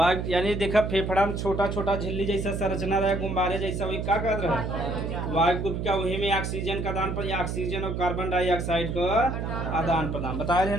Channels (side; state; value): right; noise; hum, 3 dB below the sound